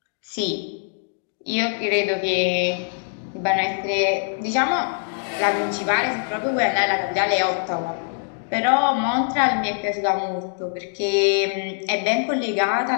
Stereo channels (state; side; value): silent; right; digital silence